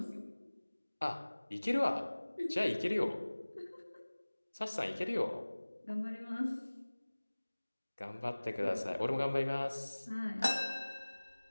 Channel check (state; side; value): inverted; both; correlation -1.00